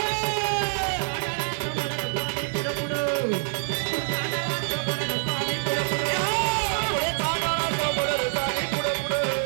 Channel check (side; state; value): left; silent; digital silence